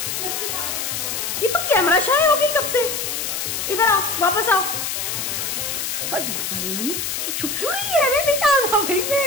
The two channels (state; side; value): noise; left; hiss, 2 dB below the sound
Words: ये तो कैमरा शाय हो गई कब से। इधर आओ, वापस आओ। नहीं तो छुप क्यों रही है, अरे नहीं आना भाई, मैं